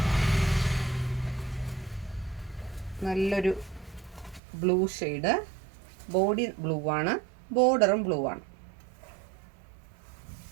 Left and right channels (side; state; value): left; drops out; at 4.4 s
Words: നല്ലൊരു ബ്ലൂ ഷെയ്ഡ്. ബോഡി ബ്ലൂ ആണ്, ബോർഡറും ബ്ലൂ ആണ്.